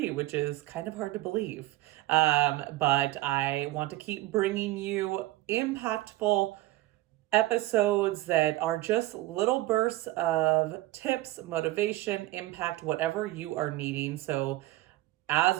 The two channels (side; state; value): left; quieter; 17.5 dB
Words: which is kind of hard to believe. But I want to keep bringing you impactful episodes that are just little bursts of tips, motivation, impact, whatever you are needing. So